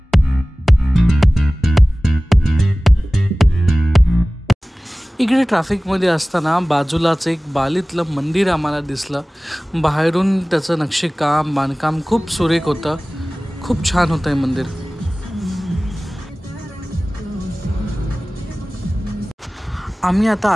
इकडे ट्रॅफिकमध्ये असताना बाजूलाच एक बालीतलं मंदिर आम्हाला दिसलं. बाहेरून त्याचं नक्षीकाम बांधकाम खूप सुरेख होतं, खूप छान होतं हे मंदिर. आम्ही आता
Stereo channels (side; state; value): both; normal; correlation 0.98